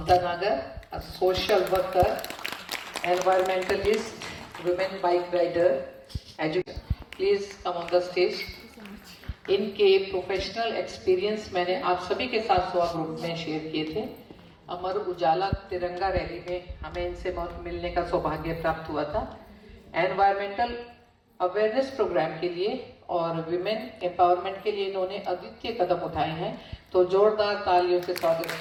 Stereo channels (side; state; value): both; identical; correlation 1.00